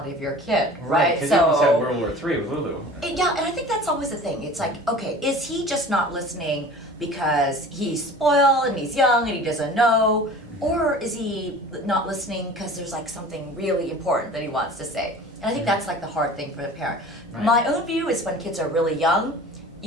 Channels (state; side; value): normal; both; correlation 0.41